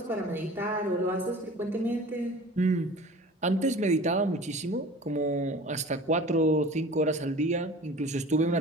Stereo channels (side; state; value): both; normal; correlation 0.41